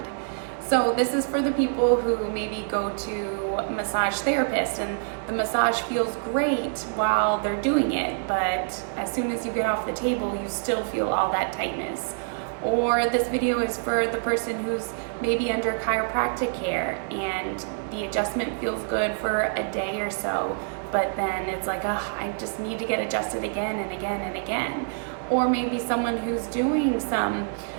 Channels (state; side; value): silent; left; 59 dB below the other